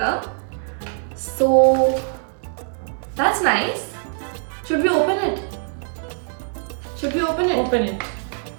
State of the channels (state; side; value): silent; left; digital silence